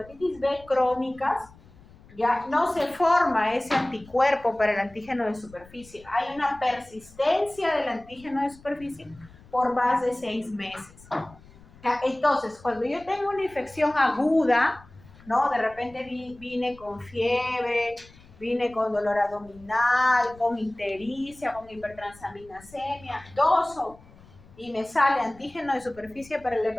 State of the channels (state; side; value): noise; left; rumble, 23 dB below the sound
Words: B crónicas, ya no se forma ese anticuerpo para el antígeno de superficie. Hay una persistencia del antígeno de superficie por más de 6 meses. Entonces, cuando yo tengo una infección aguda, ¿no? De repente vine con fiebre, vine con dolor abdominal, con ictericia, con hipertransaminasemia, toso, y me sale antígeno de superficie para el